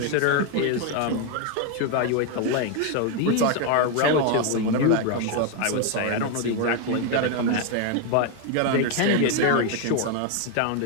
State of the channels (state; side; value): different; both; correlation 0.01